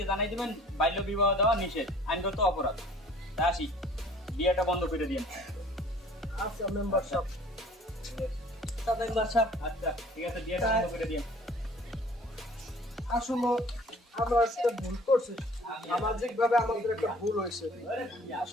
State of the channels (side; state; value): both; normal; correlation 0.52